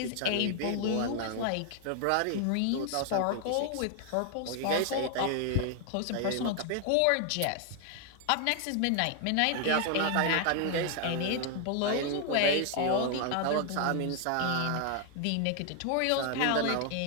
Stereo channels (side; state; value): both; different; correlation 0.00